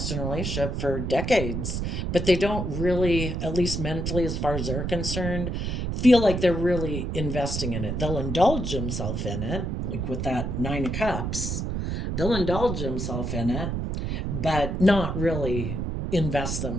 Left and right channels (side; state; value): right; noise; rumble, 2 dB below the sound